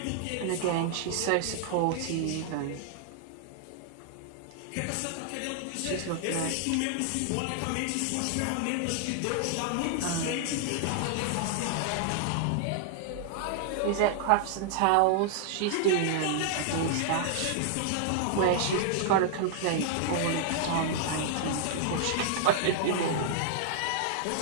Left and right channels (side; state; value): both; different; correlation -0.01